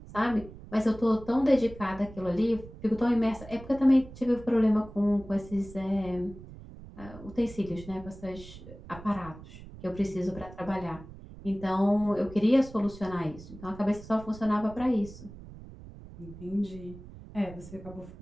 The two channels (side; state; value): right; noise; rumble, 16 dB below the sound